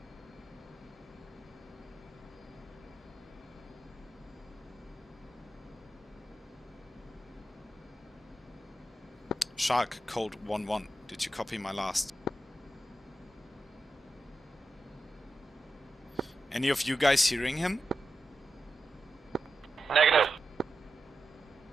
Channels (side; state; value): both; normal; correlation 0.89